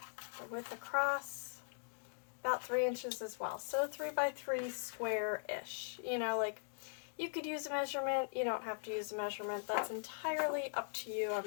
the width across about 3 inches as well. So 3 by 3 square-ish. You know, like, you could use a measurement, you don't have to use a measurement. That's entirely up to you.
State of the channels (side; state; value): right; silent; digital silence